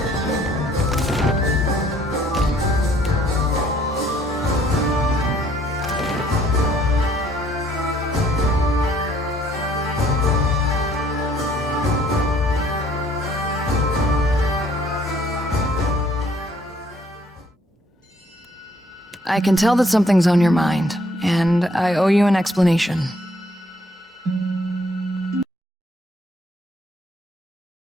I can tell that something's on your mind, and I owe you an explanation.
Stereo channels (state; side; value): normal; both; correlation 0.63